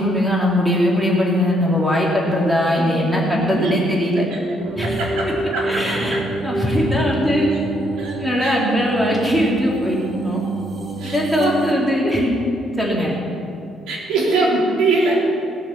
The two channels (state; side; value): normal; both; correlation 0.72